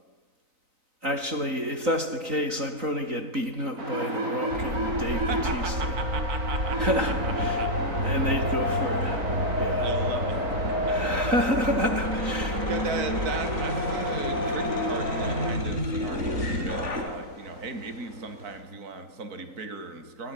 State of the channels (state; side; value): late; left; 3.9 ms